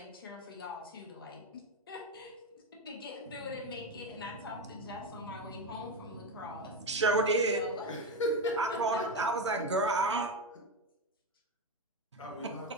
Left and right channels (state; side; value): normal; both; correlation 0.14